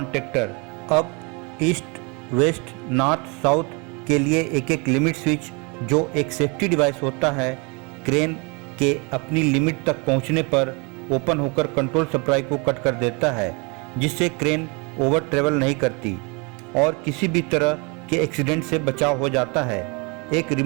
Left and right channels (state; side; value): quieter; left; 30.7 dB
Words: up east west north south के लिए एक एक लिमिट स्विच जो एक सेफ्टी डिवाइस होता है, क्रेन के अपनी लिमिट तक पहुंचने पर ओपन होकर कंट्रोल सप्लाई को कट कर देता है, जिससे क्रेन ओवर ट्रेवल नहीं करती और किसी भी तरह के एक्सीडेंट से बचाव हो जाता है। एक